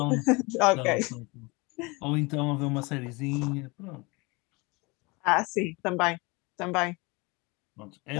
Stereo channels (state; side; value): quieter; right; 26.3 dB